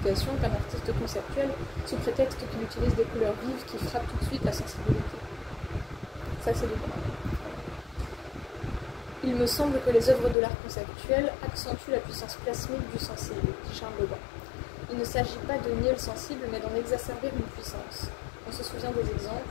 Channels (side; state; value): right; drops out; at 10.4 s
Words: qu'un artiste conceptuel, sous prétexte qu'il utilise des couleurs vives qui frappent tout de suite la sensibilité. Ça, c'est le droit. Il me semble que les œuvres de l'art conceptuel accentuent la puissance plasmique du sensible, dit Charles Bobin. Il ne s'agit pas de nier le sensible, mais d'en exacerber une puissance. On se souvient des exemples.